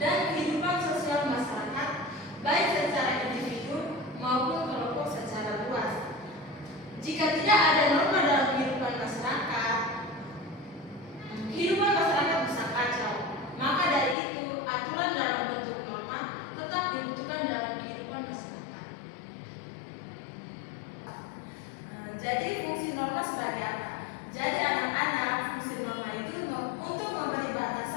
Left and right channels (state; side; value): drops out; right; at 14.2 s